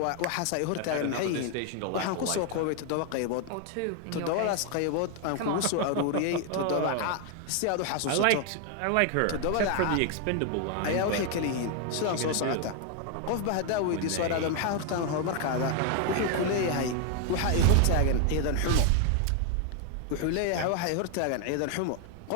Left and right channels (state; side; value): different; both; correlation 0.00